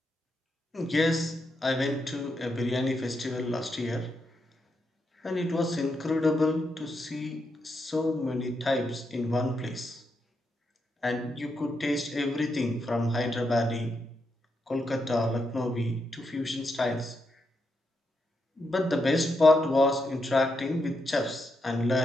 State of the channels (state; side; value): normal; both; correlation 0.83